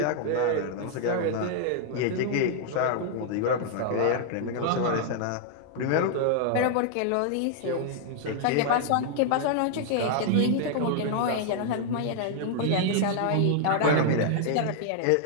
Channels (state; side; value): different; both; correlation -0.01